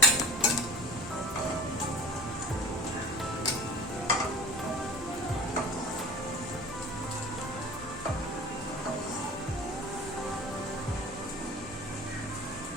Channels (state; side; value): noise; left; rumble, 16 dB below the sound